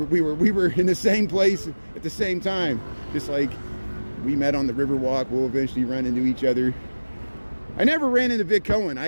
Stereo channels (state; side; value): inverted; both; correlation -1.00